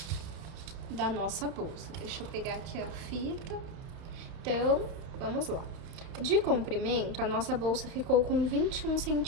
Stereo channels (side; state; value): left; late; 31 ms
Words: da nossa bolsa. Deixa eu pegar aqui a fita. Então, vamos lá. De comprimento, a nossa bolsa ficou com 21,5